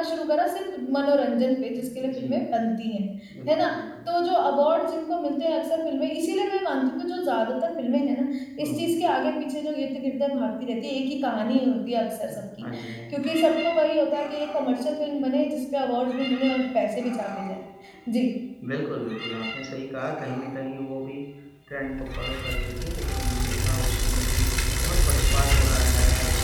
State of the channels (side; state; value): both; identical; correlation 1.00